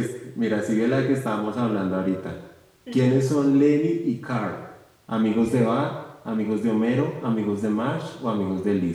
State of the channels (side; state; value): both; identical; correlation 1.00